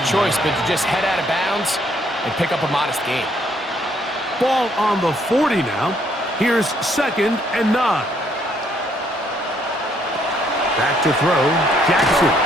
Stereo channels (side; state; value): both; normal; correlation 0.68